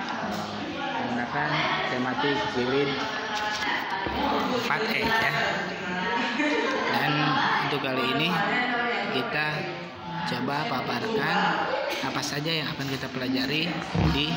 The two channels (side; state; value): both; identical; correlation 1.00